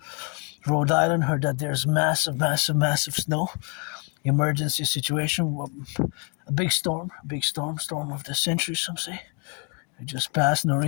Rhode Island, heard that there's massive snow. Emergency situation. A big storm of the century, some say. It just passed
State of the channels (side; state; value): right; quieter; 36.0 dB